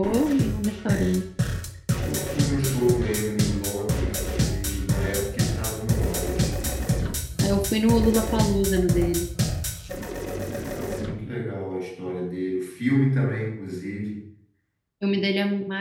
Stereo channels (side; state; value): both; identical; correlation 1.00